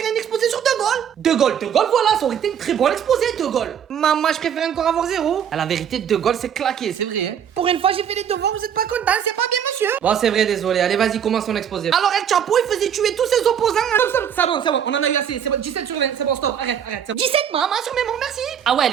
un exposé sur De Gaulle. De Gaulle, voilà, ça aurait été une très bonne exposé, De Gaulle. Maman, je préfère encore avoir 0. À la vérité, De Gaulle, c'est claqué, c'est vrai, hein. Pour une fois, j'ai fait les devoirs, vous êtes pas content, c'est pas bien, monsieur. Bon, c'est vrai, désolé. Allez, vas-y, commence ton exposé. Alors, El Chapeau, il faisait tuer tous ses opposants. C'est bon, on en a eu assez. C'est bon, 17 sur 20, c'est bon, stop, arrête, c'est bon. 17, maman, sur mémoire, merci. Ah ouais,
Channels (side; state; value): left; quieter; 8.6 dB